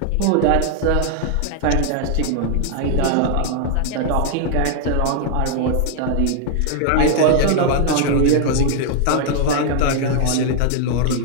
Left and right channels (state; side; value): different; both; correlation 0.00